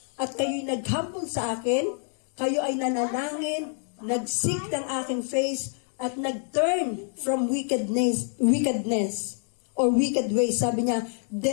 at kayo'y nag-humble sa akin, kayo ay nanalangin, nag-seek ng aking face, at nag-turn from wickedness, or wicked ways, sabi niya,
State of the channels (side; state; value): right; silent; 60 dB below the other